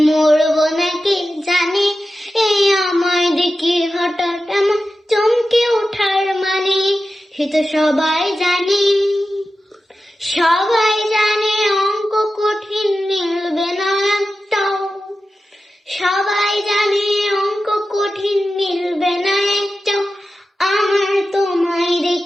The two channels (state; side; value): normal; both; correlation 0.93